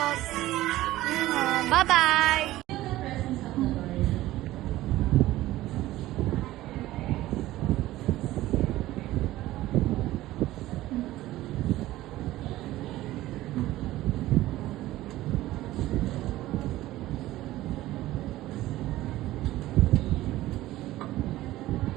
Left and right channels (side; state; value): left; quieter; 16.1 dB